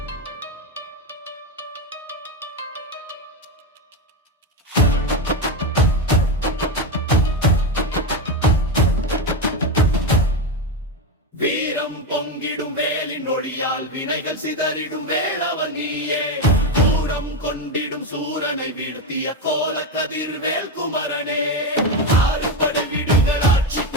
வீரம் பொங்கிடும் வேலின் ஒளியால் வினைகள் சிதறிடும் வேளவன் நீயே, தூரம் கொண்டிடும் சூரனை வீழ்த்திய கோல கதிர்வேல் குமரனே. ஆறு படை வீடுகள் ஆட்சி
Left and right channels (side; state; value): both; normal; correlation 0.13